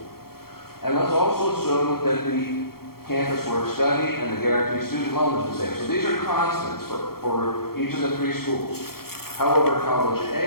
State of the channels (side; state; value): right; late; 0.94 ms